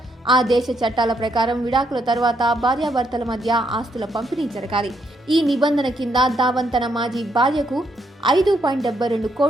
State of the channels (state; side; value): normal; both; correlation 0.76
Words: ఆ దేశ చట్టాల ప్రకారం విడాకుల తర్వాత భార్యాభర్తల మధ్య ఆస్తుల పంపిణీ జరగాలి. ఈ నిబంధన కింద ధావన్ తన మాజీ భార్యకు 5.72